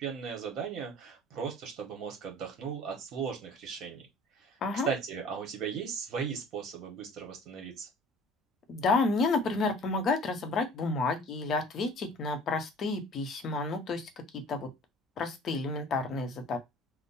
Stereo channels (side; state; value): both; normal; correlation 0.47